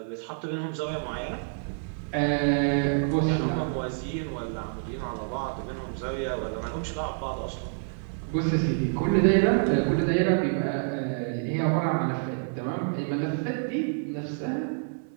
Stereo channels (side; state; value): left; silent; 59 dB below the other